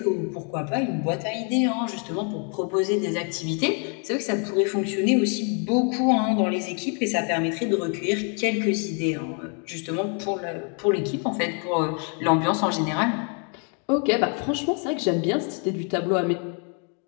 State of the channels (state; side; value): quieter; right; 39.9 dB